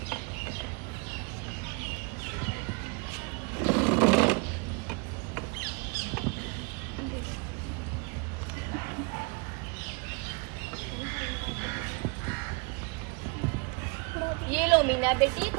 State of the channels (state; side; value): quieter; left; 30.7 dB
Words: ये लो मीना बेटी,